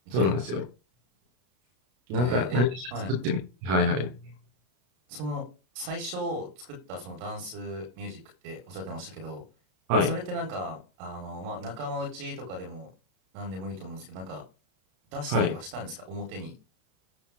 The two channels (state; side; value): late; left; 32 ms